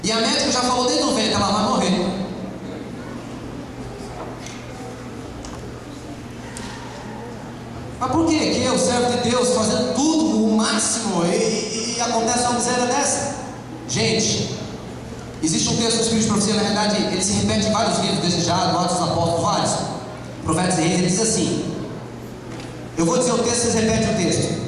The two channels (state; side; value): identical; both; correlation 1.00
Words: E a médica já falou desde o ventre, ela vai morrer. Mas por que que eu, servo de Deus, fazendo tudo o máximo e acontece uma miséria dessa? Gente, existe um texto do Espírito de Profecia, na verdade, ele se repete em vários livros desejados, Atos dos Apóstolos, vários. Profetas e Reis, ele diz assim, eu vou dizer o texto, vocês repetem o texto.